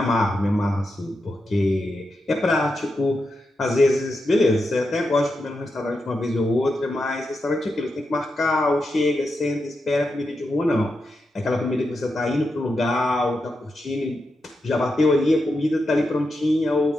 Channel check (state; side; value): normal; both; correlation 0.87